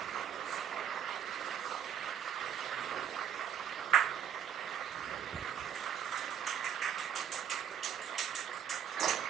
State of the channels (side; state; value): left; quieter; 8.9 dB